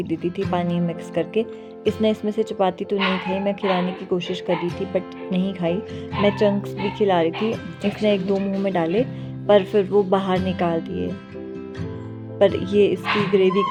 दी थी पानी मिक्स करके। इसने इसमें से चपाती तो नहीं खाई, मैं खिलाने की कोशिश कर रही थी बट नहीं खाई। मैं चंक्स भी खिला रही थी, इसने एक दो मुंह में डाले पर फिर वो बाहर निकाल दिए। पर ये इसकी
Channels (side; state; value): both; identical; correlation 1.00